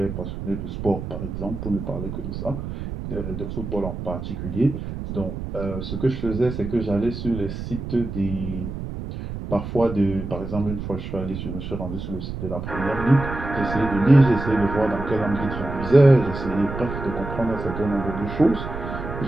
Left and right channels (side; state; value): right; noise; rumble, 7 dB below the sound